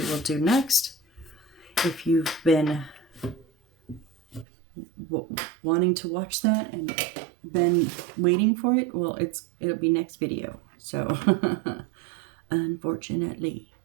will do next. If you've been wanting to watch that and been waiting for it, well, it'll be next video. So unfortunately,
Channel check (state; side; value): drops out; left; at 4.5 s